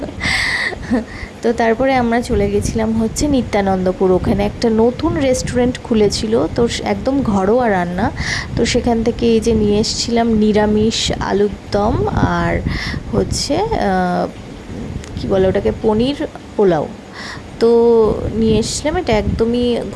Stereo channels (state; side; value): identical; both; correlation 1.00